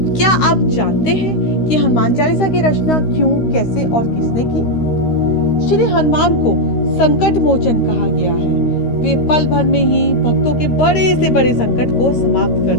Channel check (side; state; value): right; late; 13 ms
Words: क्या आप जानते हैं कि हनुमान चालीसा की रचना क्यों, कैसे और किसने की? श्री हनुमान को संकट मोचन कहा गया है। वे पल भर में ही भक्तों के बड़े से बड़े संकट को समाप्त कर